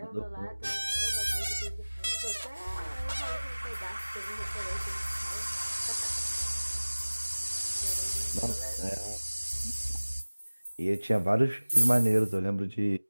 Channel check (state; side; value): inverted; both; correlation -1.00